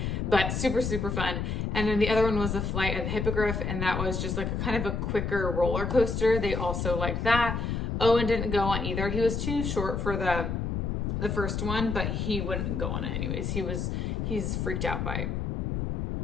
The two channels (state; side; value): noise; left; rumble, 1 dB below the sound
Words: but super, super fun. And then the other one was the Flight of the Hippogriff. And that was just like a kind of a quicker roller coaster. They also liked that. Owen didn't go on either. He was too short for the first one, but he wouldn't go on it anyways. He's freaked out by